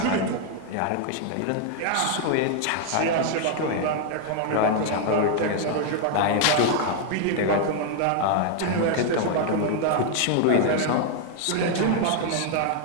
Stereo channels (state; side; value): different; both; correlation 0.00